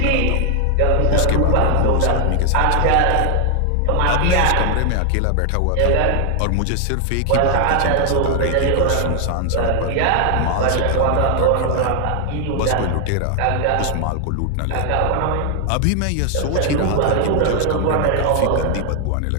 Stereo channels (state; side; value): different; both; correlation 0.00